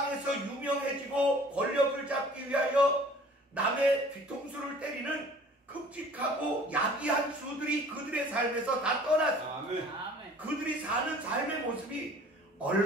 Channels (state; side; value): normal; both; correlation 0.50